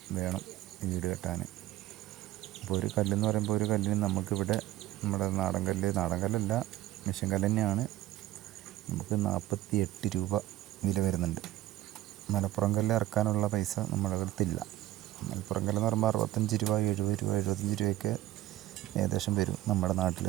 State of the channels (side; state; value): left; quieter; 14.9 dB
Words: വേണം വീട് കെട്ടാൻ. അപ്പോൾ ഒരു കല്ലെന്ന് പറയുമ്പോൾ ഒരു കല്ലിന് നമുക്കിവിടെ നമ്മുടെ നാടൻ കല്ലല്ല, മിഷ്യൻ കല്ല് തന്നെയാണ്. നമുക്ക് 48 രൂപ വില വരുന്നുണ്ട്. മലപ്പുറം കല്ല് ഇറക്കാനുള്ള പൈസ നമ്മുടെ അടുത്തില്ല. മലപ്പുറം കല്ലെന്ന് പറയുമ്പോൾ 65 രൂപ, 70 രൂപ, 75 രൂപയൊക്കെ ഏകദേശം വരും നമ്മുടെ